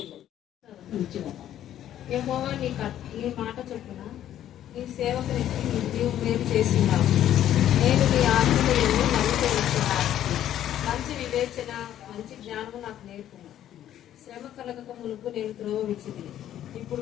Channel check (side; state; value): right; quieter; 11.5 dB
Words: యెహోవా నీ మాట చొప్పున నీ సేవకునికి నీవు మేలు చేస్తున్నావు. నేను నీ ఆత్మలను నమ్ముతున్నాను. మంచి వివేచన, మంచి జ్ఞానము నాకు నేర్పుము. శ్రమ కలగక మునుపు నేను త్రోవ విడిచితిని.